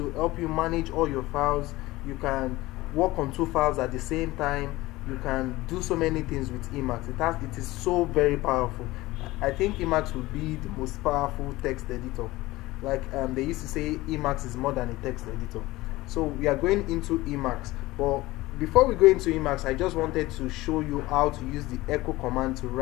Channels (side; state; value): right; quieter; 19.0 dB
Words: help you manage all your files. You can work on 2 files at the same time. You can do so many things with Emacs. It is so very powerful. I think Emacs will be the most powerful text editor. Like they used to say, Emacs is more than a text editor. So we are going into Emacs, but before we go into Emacs, I just wanted to show you how to use the echo command to